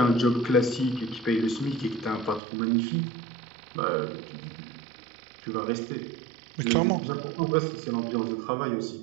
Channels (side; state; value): left; drops out; at 2.4 s